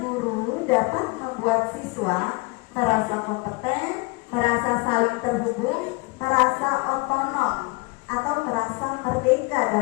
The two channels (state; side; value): quieter; right; 27.4 dB